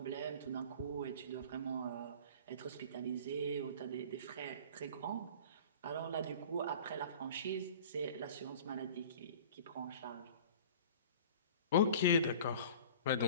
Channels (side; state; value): both; inverted; correlation -0.42